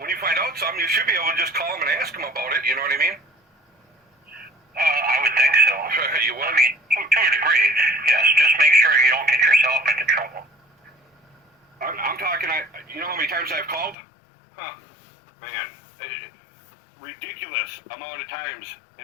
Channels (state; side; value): drops out; right; at 14.0 s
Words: find out something, you should be able to just call them and ask them about it, you know what I mean? I would think so. You would? I mean, to a degree, yes. Just make sure you don't get yourself into trouble. I'm talking, you know how many times I've called? Huh, man, ridiculous amount of times,